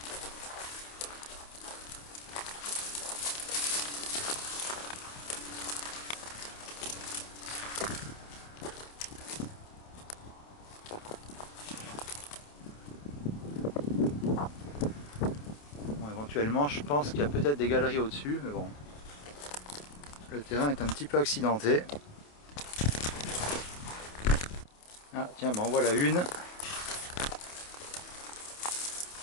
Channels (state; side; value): late; right; 28 ms